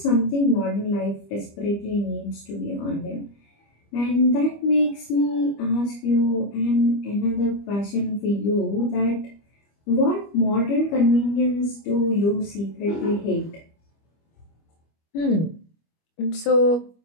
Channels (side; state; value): right; late; 25 ms